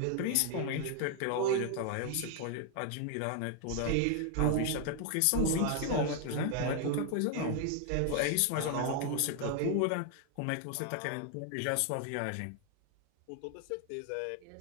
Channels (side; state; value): both; different; correlation 0.00